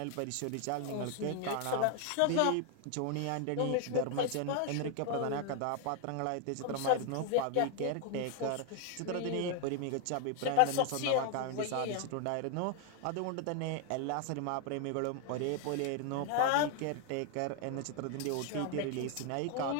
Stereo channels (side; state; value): both; different; correlation 0.00